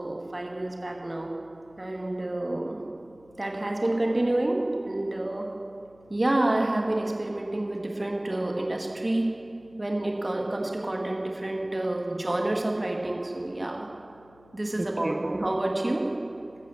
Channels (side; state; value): left; noise; hum, 28 dB below the sound